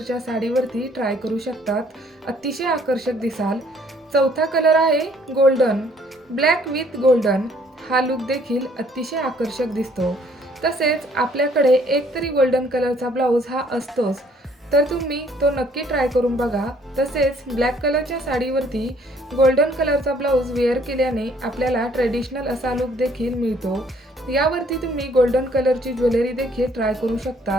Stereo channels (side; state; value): both; normal; correlation 0.62